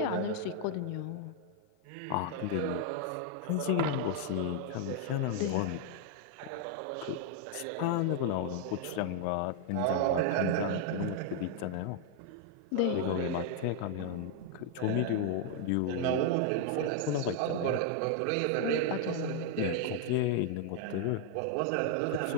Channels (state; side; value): different; both; correlation 0.00